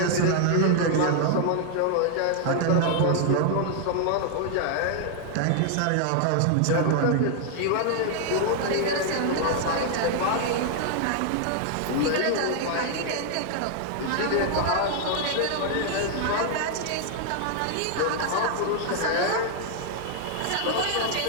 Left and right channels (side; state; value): both; different; correlation 0.00